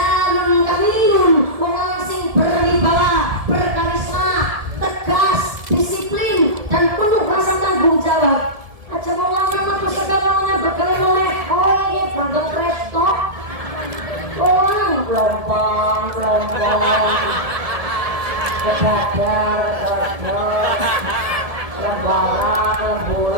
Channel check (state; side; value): late; left; 1.7 ms